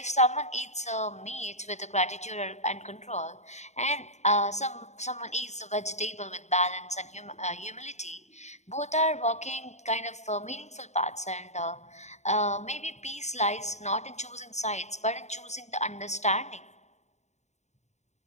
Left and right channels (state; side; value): late; right; 0.33 ms